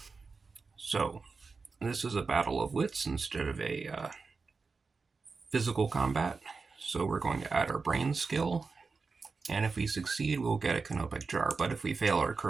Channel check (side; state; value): left; quieter; 4.5 dB